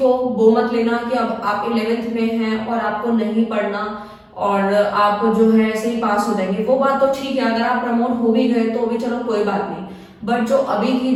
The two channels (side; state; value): both; identical; correlation 1.00